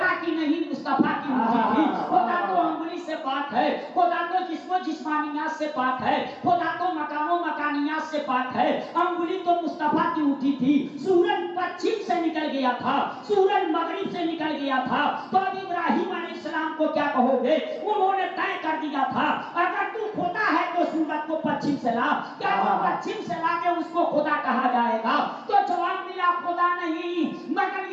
کی نہیں مصطفیٰ کی ہوتی تھی. خدا تو انگلی سے پاک ہے، خدا تو جسم و جسمانیات سے پاک ہے، خدا تو مکان و مکانیات سے پاک ہے. انگلی تو مصطفیٰ کی اٹھی تھی. سورج پچھم سے نکل گیا تھا، سورج مغرب سے نکل گیا تھا. تو اب ابراہیم علیہ السلام کو کیا کہو گے؟ انہوں نے طے کر دیا تھا اگر تو خدا ہے تو سورج کو پچھم سے لا. کیا وہ پچھم سے لا کے اس کو خدا کہا جائے گا؟ تو جواب ملا خدا نہیں، مگر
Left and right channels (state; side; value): identical; both; correlation 1.00